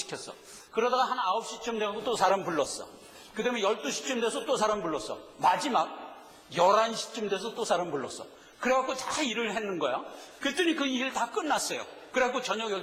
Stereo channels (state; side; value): identical; both; correlation 1.00